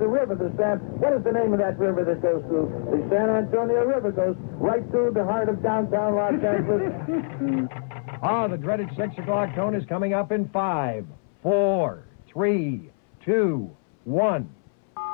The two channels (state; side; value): silent; right; 62 dB below the other